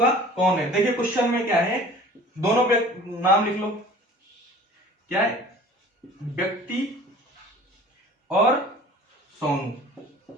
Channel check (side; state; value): both; normal; correlation 0.45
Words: कौन है। देखिए क्वेश्चन में क्या है, दोनों नाम लिख लो, क्या है, व्यक्ति और सोनू,